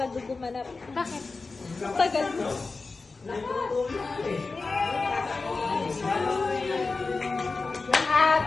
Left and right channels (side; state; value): right; quieter; 3.9 dB